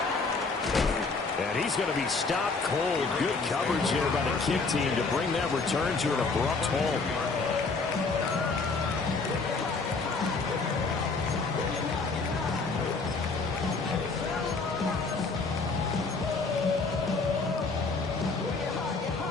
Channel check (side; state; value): right; quieter; 4.1 dB